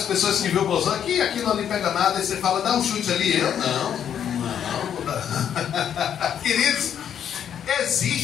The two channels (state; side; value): quieter; right; 9.1 dB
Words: pessoas que viu o bolsão aqui não lhe pega nada, e você fala: dá um chute ali. Eu não. Queridos,